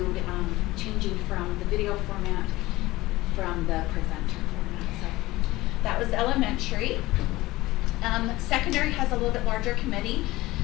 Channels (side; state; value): right; quieter; 18.7 dB